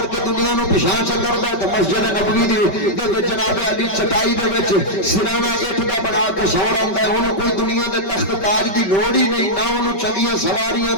کے دنیا نو پچھاں چ کردا ہے۔ تے مسجد نبوی دے وچ جناب علی چٹائی دے وچ سرانہ اٹھ دا بنا کے سو رہندا ہے، اونوں کوئی دنیا دے تخت تاج دی لوڑ ہی نہیں، نہ اونوں چنگیاں سواریاں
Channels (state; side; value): late; right; 5.2 ms